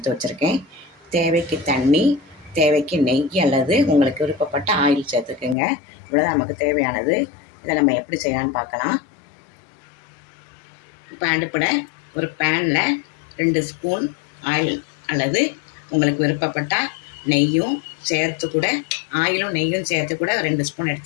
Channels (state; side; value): drops out; right; at 5.6 s